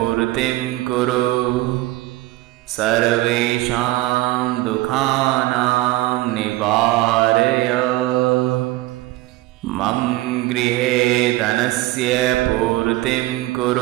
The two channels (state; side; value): quieter; left; 18.1 dB